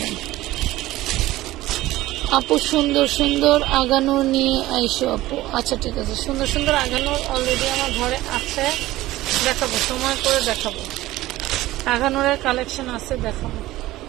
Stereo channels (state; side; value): quieter; left; 16.8 dB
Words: নেই। আপু সুন্দর সুন্দর আগানো নিয়ে আইসো আপু, আচ্ছা ঠিক আছে, সুন্দর সুন্দর আগানো অলরেডি আমার ঘরে আছে, দেখাবো, সময় করে দেখাবো। আগানোরের কালেকশন আছে, দেখাবো।